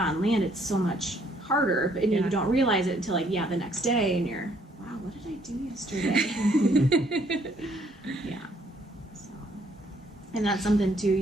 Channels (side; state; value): both; normal; correlation 0.66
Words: land it's so much harder. But you don't realize it until like the next day, and you're, wow, what did I do yesterday? So, and that's something too.